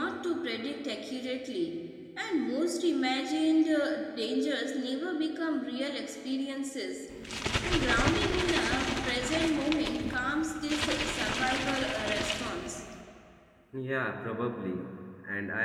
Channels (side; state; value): both; identical; correlation 1.00